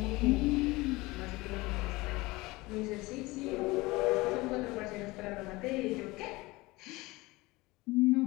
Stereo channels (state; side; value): quieter; right; 21.8 dB